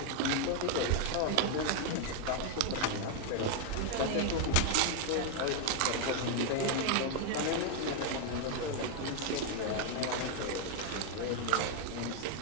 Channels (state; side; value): different; both; correlation 0.00